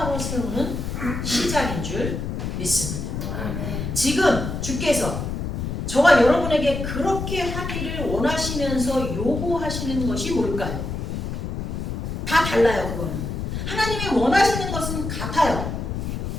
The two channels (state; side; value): noise; left; rumble, 4 dB below the sound